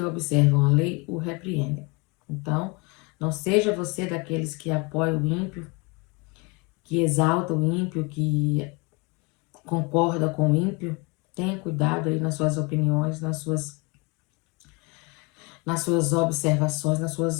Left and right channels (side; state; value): right; quieter; 28.5 dB